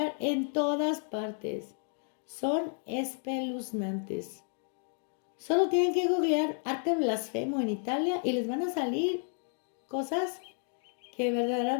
en todas partes. Son espeluznantes. Solo tienen que googlear arte blasfemo en Italia y les van a salir cosas que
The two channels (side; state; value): right; silent; 56 dB below the other